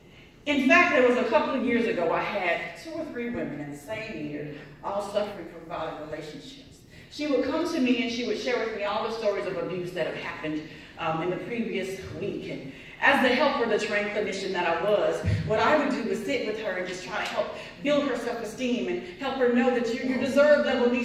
In fact, there was a couple of years ago, I had 2 or 3 women in the same year, all suffering from violent relationships. She would come to me and she would share with me all the stories of abuse that had happened in the previous week. And as the helper, the trained clinician that I was, what I would do was sit with her and just try to help build her self-esteem and help her know that your deserve level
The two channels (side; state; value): both; identical; correlation 1.00